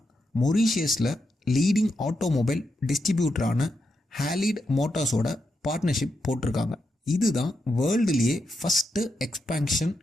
மொரீஷியஸில் லீடிங் ஆட்டோமொபைல் டிஸ்ட்ரிபியூட்டரான ஹாலிட் மோட்டார்ஸோட பார்ட்னர்ஷிப் போட்டிருக்காங்க. இதுதான் வேர்ல்டுலேயே ஃபஸ்ட்டு எக்ஸ்பேன்ஷன்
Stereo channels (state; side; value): normal; both; correlation 0.84